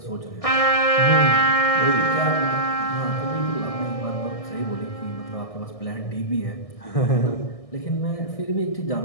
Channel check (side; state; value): right; late; 1.6 ms